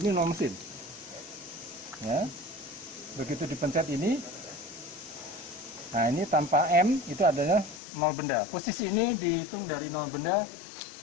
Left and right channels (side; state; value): right; drops out; at 7.8 s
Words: ini nol mesin. Ya. Begitu dipencet ini, nah ini tanpa M itu adalah nol benda. Posisi ini dihitung dari nol benda